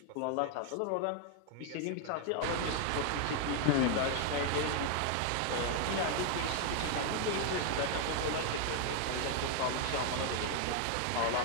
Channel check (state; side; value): different; both; correlation 0.00